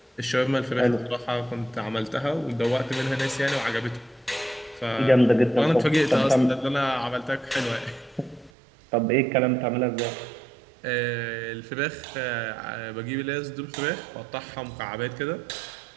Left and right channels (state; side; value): drops out; left; at 8.5 s